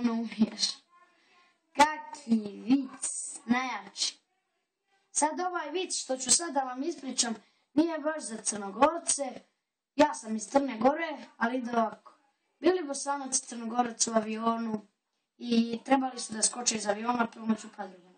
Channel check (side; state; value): both; identical; correlation 1.00